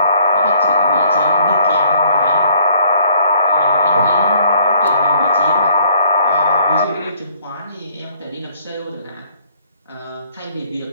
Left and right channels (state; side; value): inverted; both; correlation -0.62